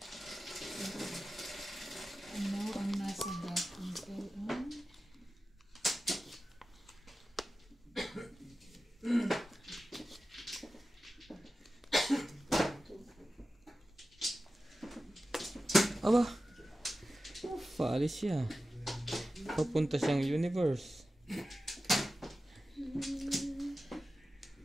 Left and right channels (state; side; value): normal; both; correlation 0.94